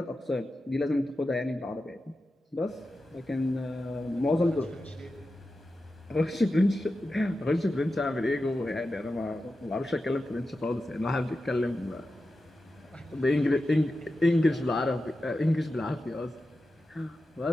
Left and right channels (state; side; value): normal; both; correlation 0.92